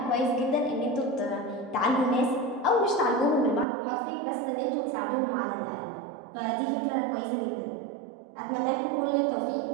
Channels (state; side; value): drops out; left; at 3.7 s